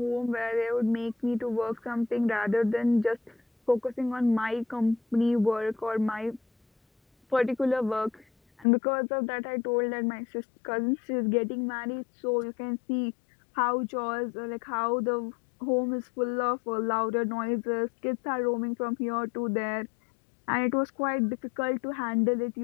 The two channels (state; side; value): drops out; right; at 8.7 s